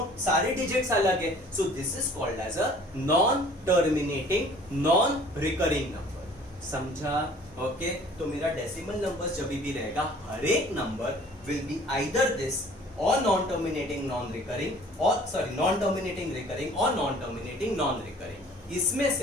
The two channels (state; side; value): normal; both; correlation 0.51